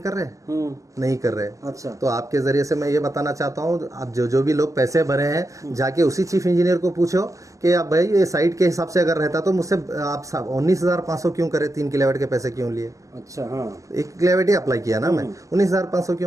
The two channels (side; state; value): left; late; 0.16 ms